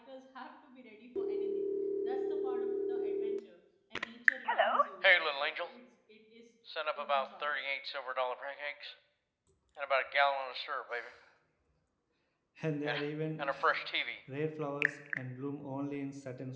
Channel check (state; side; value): identical; both; correlation 1.00